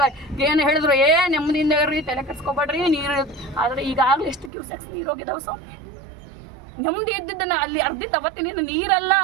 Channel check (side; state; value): left; drops out; at 4.5 s